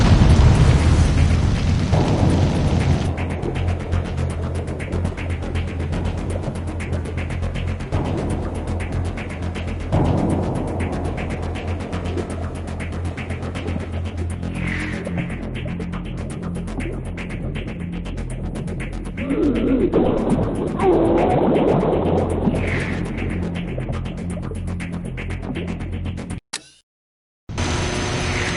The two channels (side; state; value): both; identical; correlation 1.00